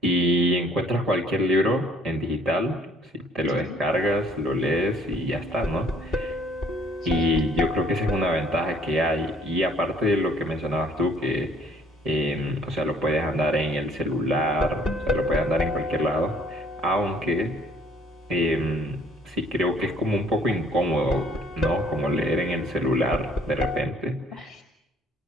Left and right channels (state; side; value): normal; both; correlation 0.60